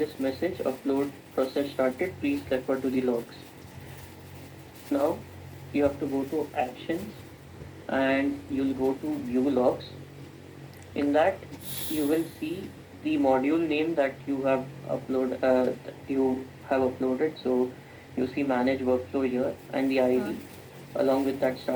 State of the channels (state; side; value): identical; both; correlation 1.00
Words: message, upload process started, please refer to the logs. Now you have to go to actions and you'll go to view logs. In that you will see the module name that you have uploaded. So you see manage workflow here and the ID along with that